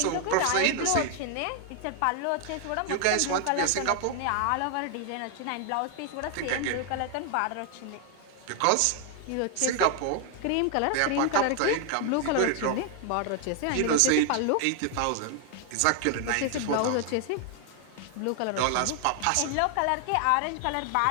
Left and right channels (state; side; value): different; both; correlation 0.00